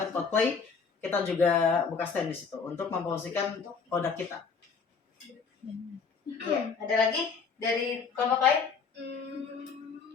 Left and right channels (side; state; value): right; quieter; 5.5 dB